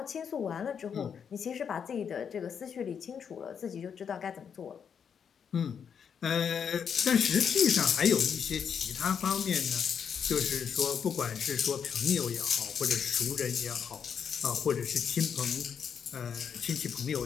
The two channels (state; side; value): quieter; right; 7.3 dB